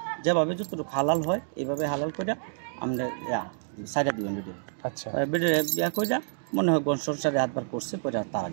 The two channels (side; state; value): left; silent; digital silence